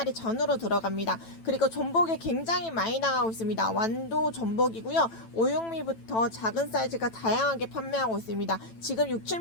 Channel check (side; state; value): right; late; 9.0 ms